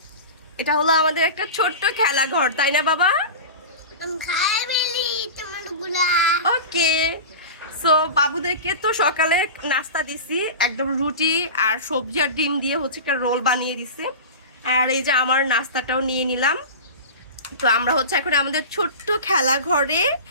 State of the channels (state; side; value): inverted; both; correlation -0.30